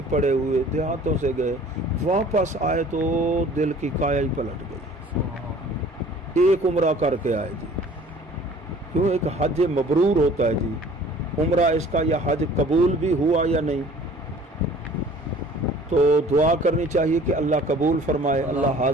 پڑے ہوئے دیہاتوں سے گئے، واپس آئے تو دل کی کایا ہی پلٹ گئی. ایک عمرہ کر کے آئے جی. کیوں؟ ایک حج مبرور ہوتا ہے جی. عمرہ اس کا یا حج قبول بھی ہوا یا نہیں، تو دعا کرنی چاہیے کہ اللہ قبول فرمائے، اللہ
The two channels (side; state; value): both; normal; correlation 0.50